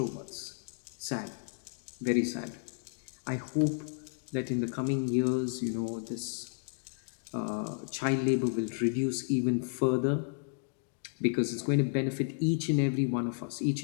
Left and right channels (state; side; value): silent; right; digital silence